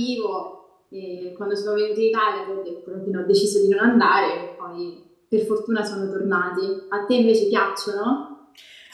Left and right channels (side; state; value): both; identical; correlation 1.00